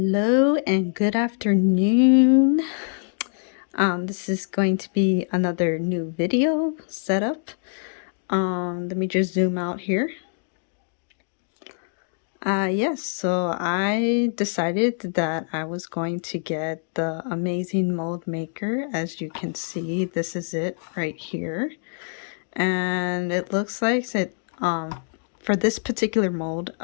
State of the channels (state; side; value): silent; right; digital silence